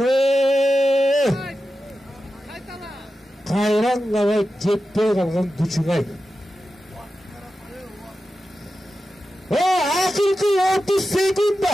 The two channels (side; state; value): both; normal; correlation 0.92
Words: Кайраңгабай жетпей калган күчүңай. Акыркы 30